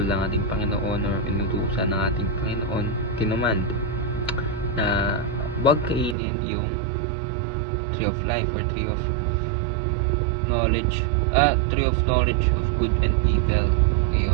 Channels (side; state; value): left; drops out; at 6.2 s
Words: ng ating Panginoon or inutusan ng ating Panginoon, kinumand na huwag kainin yung tree of life or tree of knowledge of good and evil.